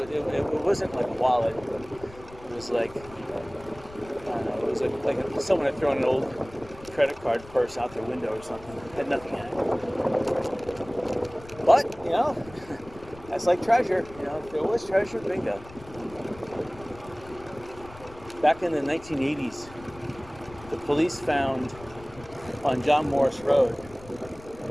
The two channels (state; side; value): noise; left; rumble, 20 dB below the sound